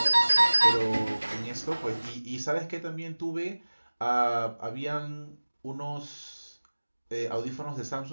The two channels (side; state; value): both; inverted; correlation -1.00